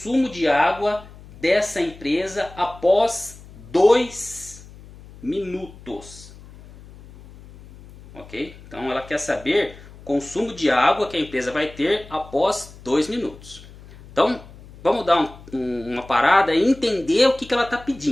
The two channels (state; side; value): noise; left; hum, 20 dB below the sound